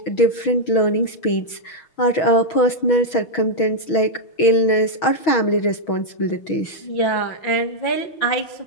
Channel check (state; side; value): late; right; 6.3 ms